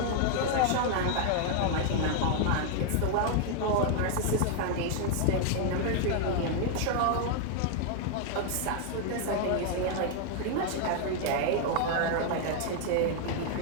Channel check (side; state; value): both; different; correlation 0.00